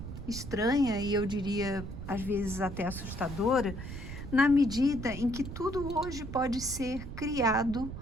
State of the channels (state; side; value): noise; right; rumble, 9 dB below the sound